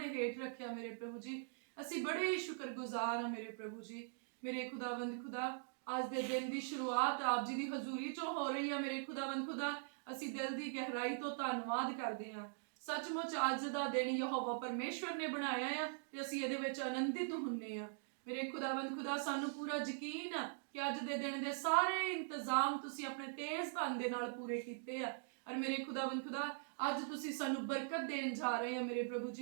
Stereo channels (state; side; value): silent; left; digital silence